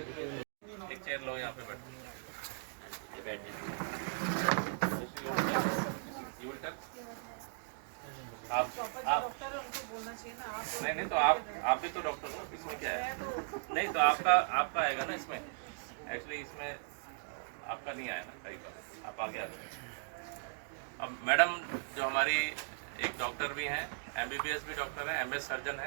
एक चेयर लो यहाँ पे बैठिए आप नहीं तो आप भी तो डॉक्टर हो इसमें क्या है नहीं तो आपका आएगा ना इसमें एक्चुअली इसमें आपका नहीं आया ना कई बार आप आगे आ जाए अब मैडम जो हमारी एक डॉक्टर भी हैं MBBS भी डॉक्टर है MS सर्जन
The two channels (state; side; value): silent; left; digital silence